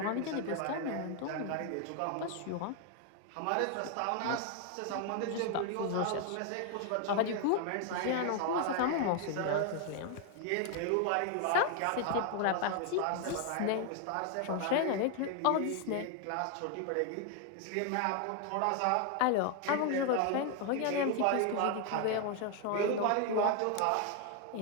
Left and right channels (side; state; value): both; different; correlation 0.00